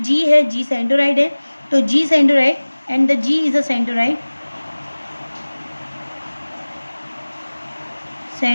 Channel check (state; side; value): inverted; both; correlation -1.00